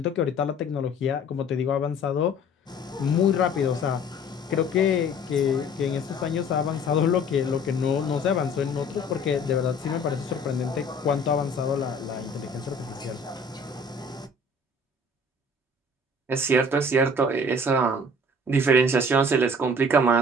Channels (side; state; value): both; normal; correlation 0.50